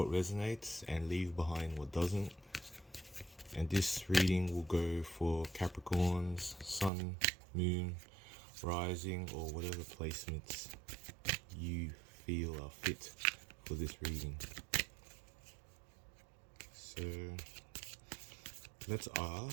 resonates and leave behind what doesn't. And this reading will go for Capricorns, Sun, Moon, Rising, or whatever placements you feel are fit for this reading. So let's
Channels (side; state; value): left; drops out; at 6.9 s